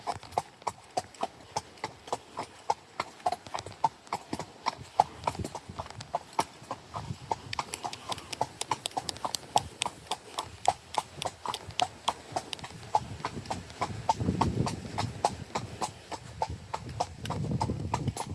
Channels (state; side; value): identical; both; correlation 1.00